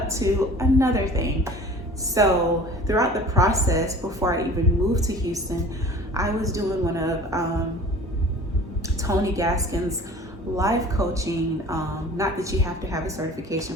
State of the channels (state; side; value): normal; both; correlation 0.44